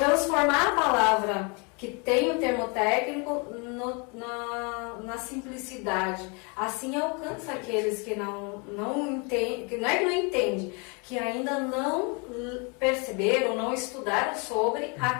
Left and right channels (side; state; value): right; quieter; 32.6 dB